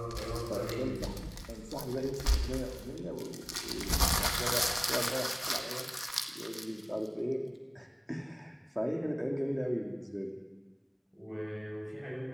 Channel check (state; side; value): identical; both; correlation 1.00